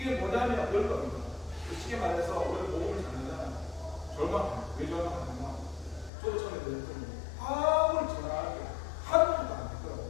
뭐냐면 그런 겁니다. 쉽게 말해서 우리가 복음을 전하잖아요. 절망합니다. 왜 절망하냐면 저도 처음에 그랬더니 아무리 전하는 게 한 번도 안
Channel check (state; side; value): drops out; right; at 6.1 s